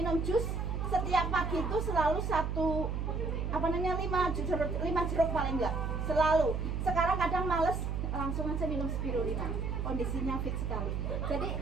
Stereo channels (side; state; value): right; noise; hum, 1 dB below the sound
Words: jus setiap pagi itu selalu 5 jeruk paling enggak selalu. Sekarang kadang males, langsung aja minum spirulina, kondisinya fit sekali. Jadi